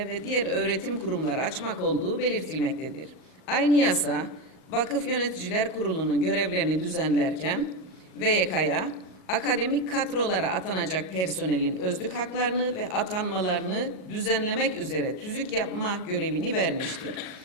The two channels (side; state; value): right; late; 38 ms